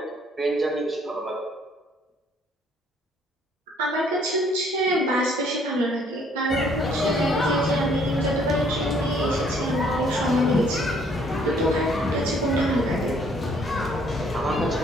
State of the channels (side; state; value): both; normal; correlation 0.63